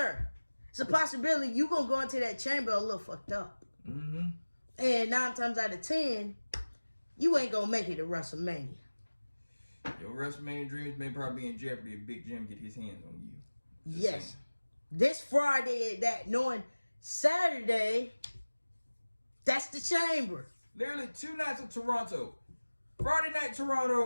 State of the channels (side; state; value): both; inverted; correlation -1.00